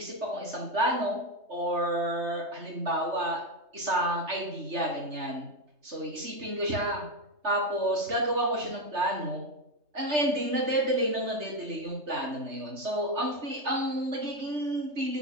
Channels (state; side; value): late; left; 3.3 ms